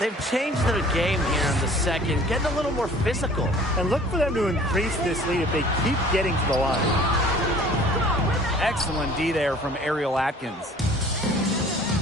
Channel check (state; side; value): normal; both; correlation 0.50